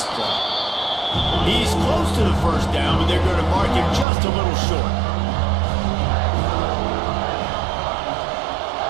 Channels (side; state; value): left; drops out; at 4.0 s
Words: play. He's close to the first down, but they're going to mark him just a little short.